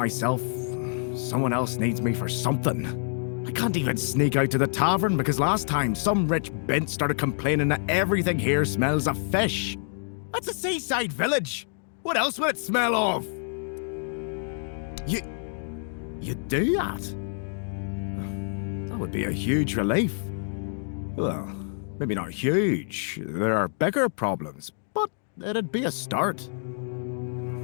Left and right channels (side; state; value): right; silent; digital silence